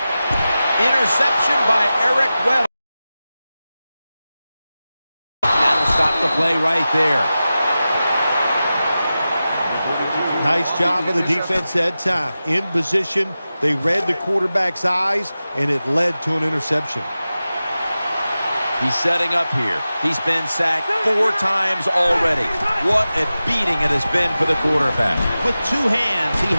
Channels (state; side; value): inverted; both; correlation -0.94